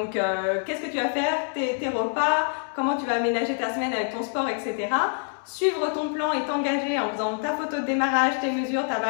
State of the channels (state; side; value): silent; right; 61 dB below the other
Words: qu'est-ce que tu vas faire, tes repas, comment tu vas aménager ta semaine avec ton sport, etc. Suivre ton plan et t'engager en faisant ta photo de démarrage, tes mesures, ta